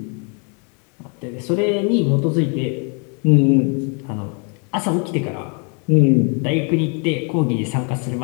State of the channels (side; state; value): right; quieter; 37.8 dB